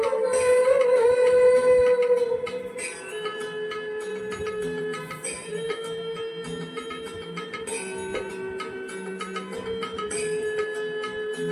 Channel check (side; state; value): both; identical; correlation 1.00